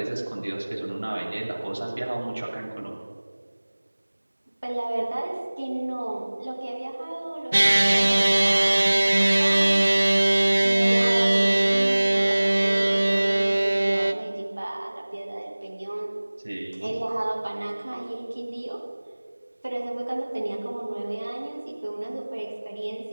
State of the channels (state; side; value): inverted; both; correlation -1.00